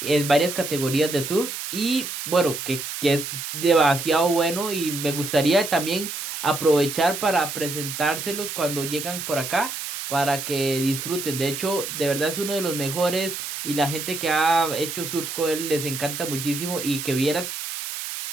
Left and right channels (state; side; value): noise; right; hiss, 6 dB below the sound